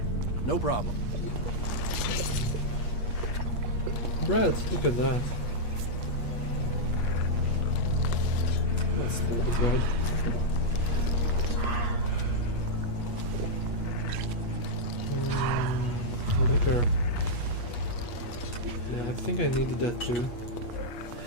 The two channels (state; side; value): late; right; 8.4 ms